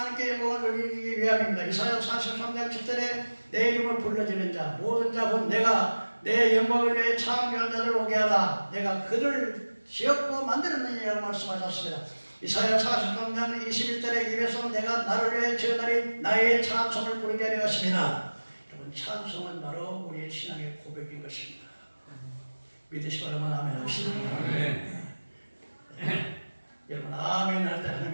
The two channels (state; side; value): inverted; both; correlation -1.00